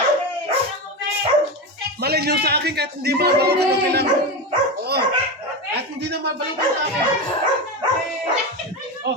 Malay nyo sa akin kahit hindi mabalutan ng kailangan. Oo. Kahit hindi na mabalutan sa akin.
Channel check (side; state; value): both; normal; correlation 0.18